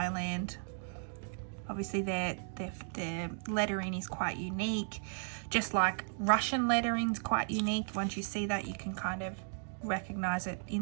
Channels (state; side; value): silent; left; digital silence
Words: Obviously their lettering is quite unique, just like Russian lettering is quite unique. Once you see that, you can kind of recognize it